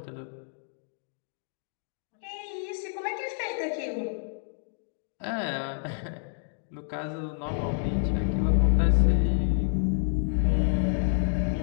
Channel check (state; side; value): silent; right; digital silence